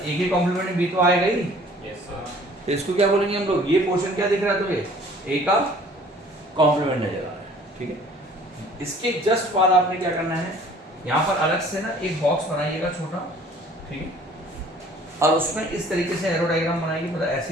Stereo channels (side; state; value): both; normal; correlation 0.53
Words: की कॉम्प्लीमेंट बी तो आएगा ही। Yes sir. तो इसको क्या बोलेंगे हम लोग? ये पोर्शन क्या दिख रहा है तुम्हें? ए का कॉम्प्लीमेंट नजर आ रहा है, ठीक है। इसके जस्ट बाद आपने क्या करना है? यहाँ पर अलग से ना एक बॉक्स बनाइएगा छोटा, ठीक है, और उसमें इस तरीके से एरो डायग्राम बनाएगी। मतलब